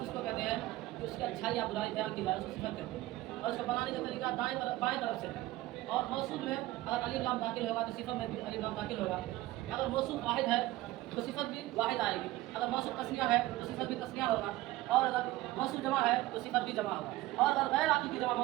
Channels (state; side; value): quieter; left; 17.3 dB